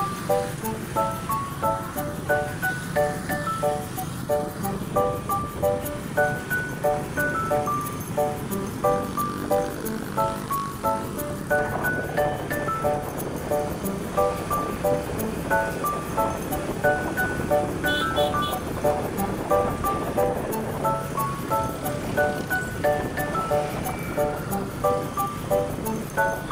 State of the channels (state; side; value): identical; both; correlation 1.00